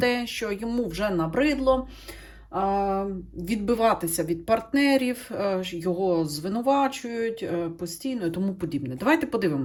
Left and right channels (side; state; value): both; identical; correlation 1.00